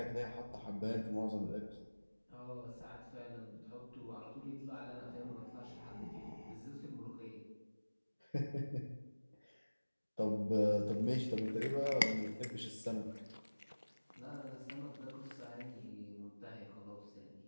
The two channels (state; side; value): inverted; both; correlation -1.00